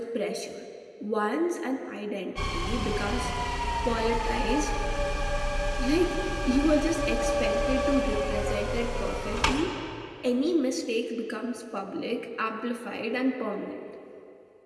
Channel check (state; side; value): identical; both; correlation 1.00